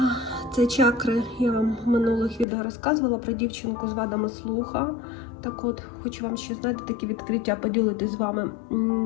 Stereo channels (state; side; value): drops out; right; at 2.5 s